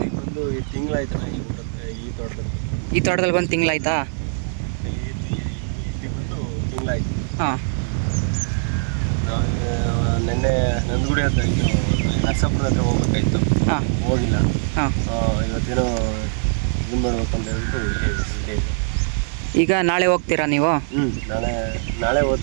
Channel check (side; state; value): left; silent; digital silence